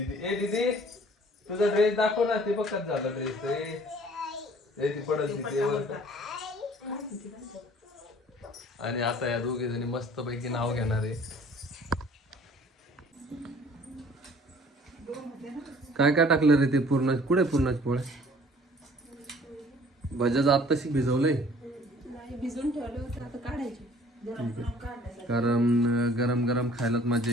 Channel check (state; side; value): normal; both; correlation 0.53